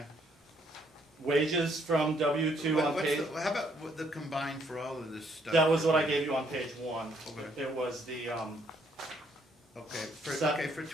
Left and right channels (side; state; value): both; normal; correlation 0.69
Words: Wages from W-2 on page, How about the combined for all of this stuff? that was what I gave you on page 1. Okay. It was the, Okay, for